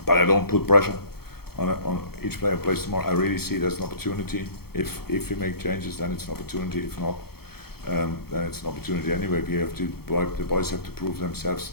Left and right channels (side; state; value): right; late; 0.95 ms